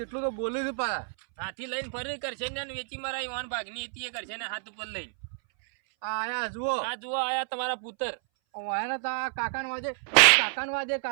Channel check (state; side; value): silent; left; 58 dB below the other